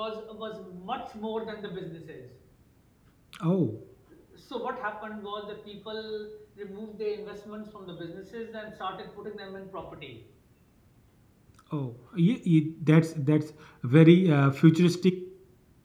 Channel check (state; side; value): identical; both; correlation 1.00